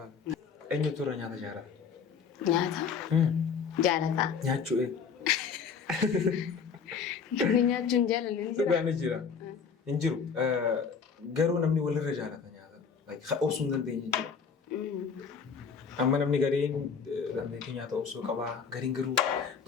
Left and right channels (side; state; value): right; quieter; 6.2 dB